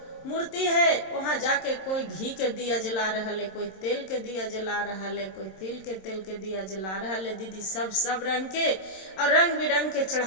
मूर्ति है, वहाँ जाके कोई घी के दिया जला रहा है, कोई तेल के दिया जला रहा है, कोई तिल के तेल के दिया जला रहा है दीदी, सब रंग के और रंग बिरंग के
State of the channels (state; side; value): late; right; 27 ms